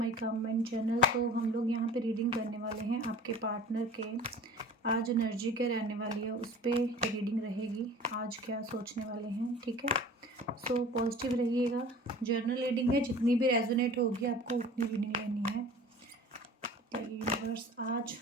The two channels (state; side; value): normal; both; correlation 0.42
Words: comment channel. तो हम लोग यहाँ पे रीडिंग करने वाले हैं आपके पार्टनर के। आज एनर्जी क्या रहने वाली है उस पे रीडिंग रहेगी। आज क्या सोचने वाले हैं, ठीक है। सो पॉजिटिव रहिएगा। जर्नल रीडिंग है, जितनी भी रेजोनेट होगी आपको उतनी रीडिंग लेनी है। बताइए यूनिवर्स, आज